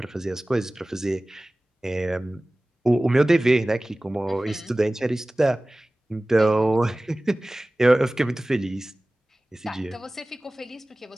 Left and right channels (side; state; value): both; normal; correlation 0.98